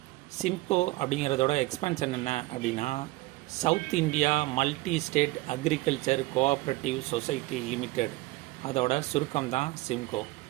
சிம்கோ அப்படிங்கிறதோட எக்ஸ்பென்ஷன் என்ன அப்படின்னா, south India multi state agriculture cooperative society limited, அதோட சுருக்கம் தான் சிம்கோ.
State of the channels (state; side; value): quieter; left; 20.4 dB